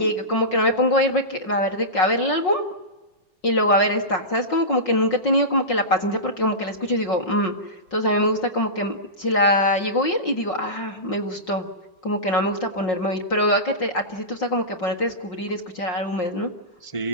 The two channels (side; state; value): right; late; 5.5 ms